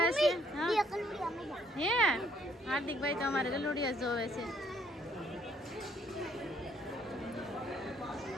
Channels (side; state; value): both; normal; correlation 0.67